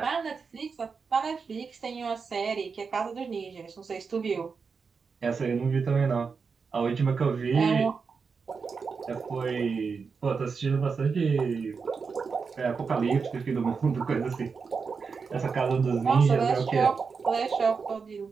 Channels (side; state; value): left; quieter; 5.3 dB